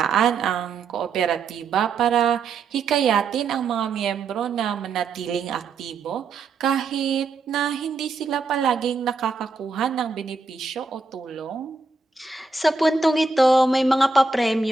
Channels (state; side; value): quieter; left; 4.2 dB